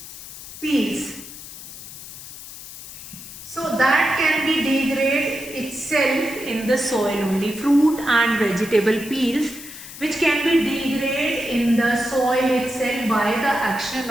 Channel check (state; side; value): noise; left; hiss, 13 dB below the sound